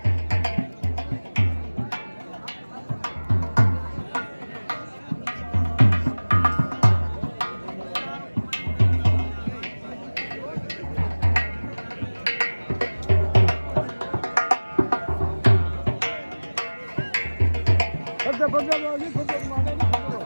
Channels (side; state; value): both; inverted; correlation -1.00